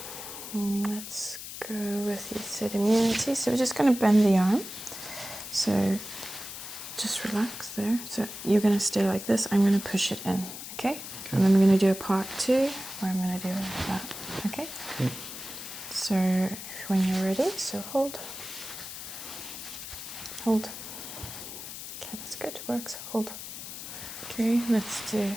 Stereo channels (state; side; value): noise; left; hiss, 10 dB below the sound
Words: Let's go with, you said, immunity. So we're just going to bend the arm. So just relax there. So you're going to stay like this. I'm going to push it in, okay? And then we're going to do a part 2 where I'm going to do like that, okay? So when you're ready, so hold. Hold. Okay, that's good. Works. Hold. Okay, let's do,